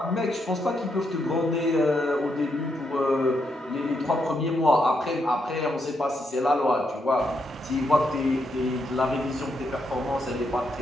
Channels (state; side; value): normal; both; correlation 0.80